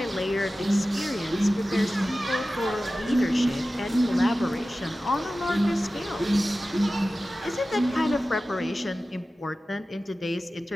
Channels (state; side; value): normal; both; correlation 0.95